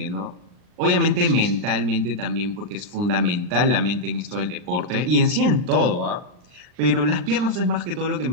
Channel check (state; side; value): late; left; 39 ms